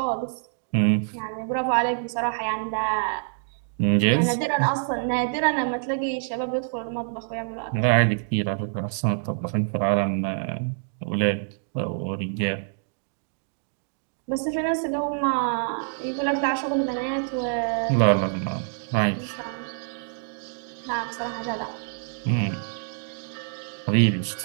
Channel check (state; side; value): silent; left; digital silence